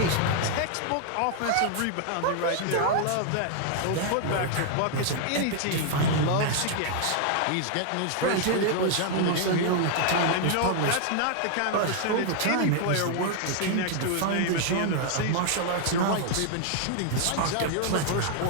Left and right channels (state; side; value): different; both; correlation 0.00